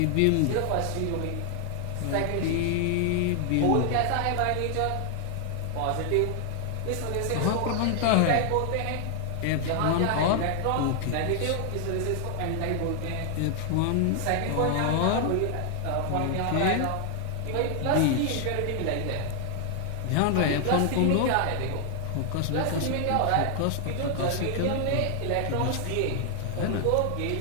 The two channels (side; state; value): both; different; correlation 0.00